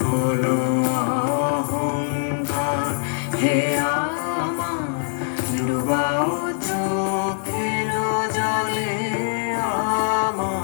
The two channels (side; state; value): right; silent; digital silence